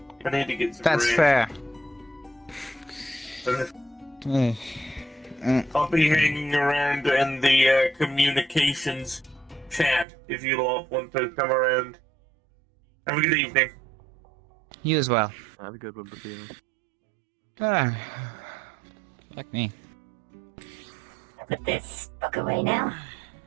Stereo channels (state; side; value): drops out; left; at 10.1 s